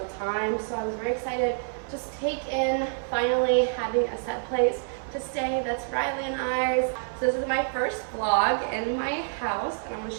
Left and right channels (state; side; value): silent; left; 55 dB below the other